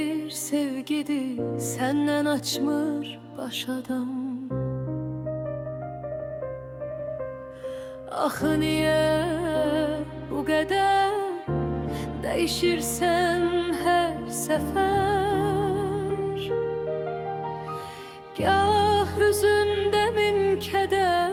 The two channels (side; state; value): both; identical; correlation 1.00